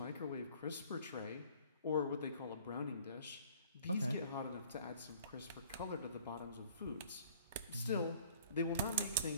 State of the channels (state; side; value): inverted; both; correlation -0.54